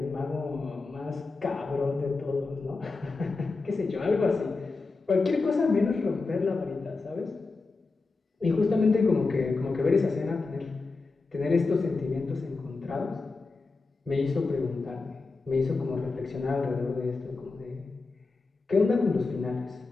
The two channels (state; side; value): quieter; right; 3.9 dB